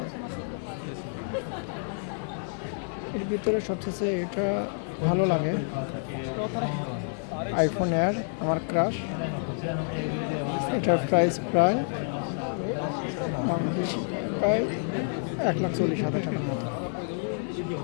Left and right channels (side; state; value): right; silent; 59 dB below the other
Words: এর ভিতরে সবচেয়ে এটা ভালো লাগে আইফোন এয়ার, আমার ক্রাশ। এটার প্রাইস প্রায় 1,40,000 টাকার মতো।